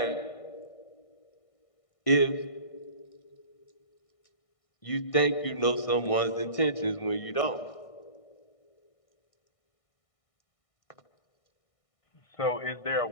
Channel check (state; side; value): late; right; 1.6 ms